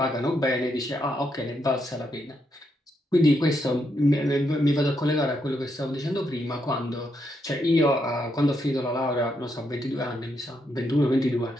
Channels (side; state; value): both; normal; correlation 0.79